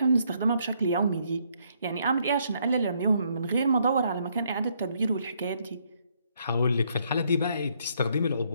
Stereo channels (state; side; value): inverted; both; correlation -0.71